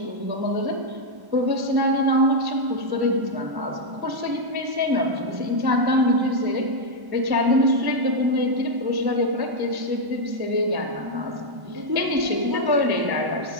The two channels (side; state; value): left; late; 1.1 ms